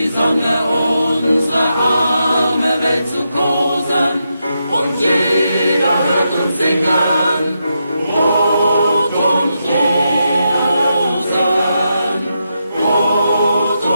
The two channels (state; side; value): inverted; both; correlation -0.84